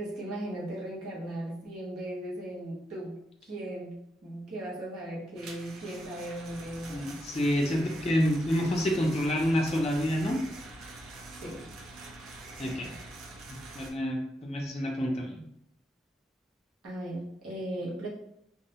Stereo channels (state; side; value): normal; both; correlation 0.83